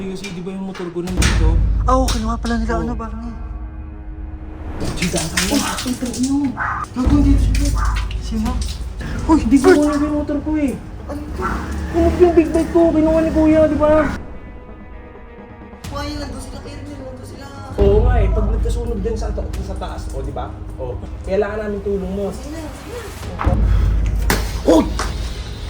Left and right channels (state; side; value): identical; both; correlation 1.00